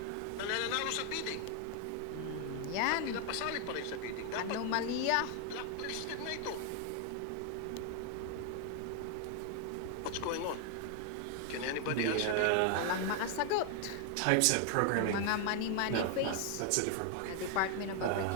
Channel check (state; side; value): different; both; correlation 0.00